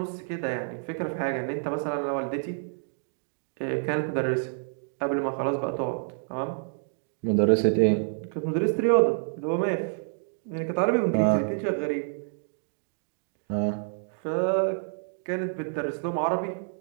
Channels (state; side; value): silent; left; digital silence